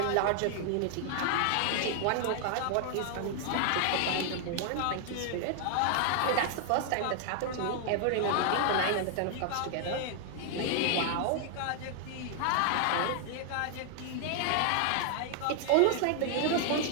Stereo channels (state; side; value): different; both; correlation 0.00